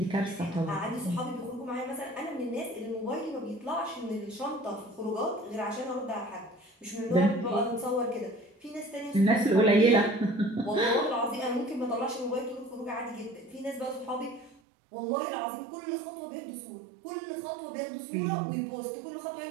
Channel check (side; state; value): left; drops out; at 14.6 s